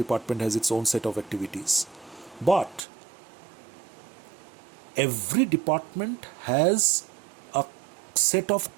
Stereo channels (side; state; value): left; drops out; at 2.9 s